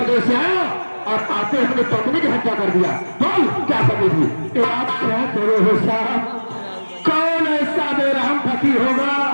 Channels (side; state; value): both; inverted; correlation -1.00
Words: से आया और आते अपनी पत्नी की हत्या कर दिया? बोल, क्या कमी थी? आप क्या करो साहब, कौन ऐसा बेरहम पति होगा